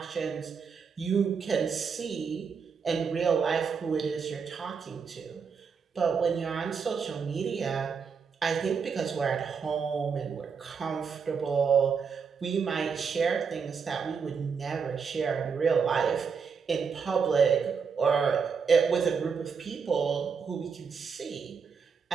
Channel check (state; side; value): quieter; left; 6.0 dB